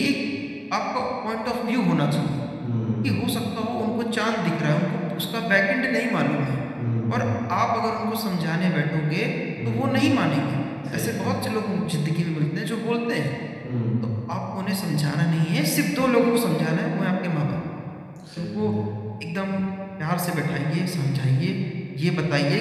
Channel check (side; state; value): both; identical; correlation 1.00